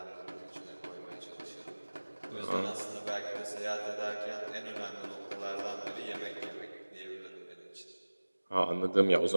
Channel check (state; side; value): inverted; both; correlation -1.00